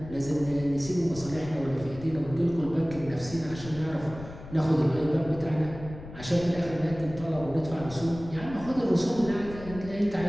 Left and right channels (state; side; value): noise; left; rumble, 14 dB below the sound